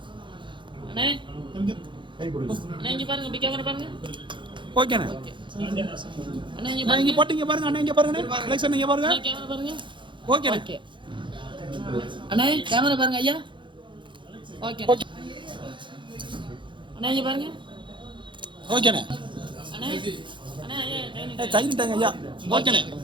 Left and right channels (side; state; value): left; late; 0.23 ms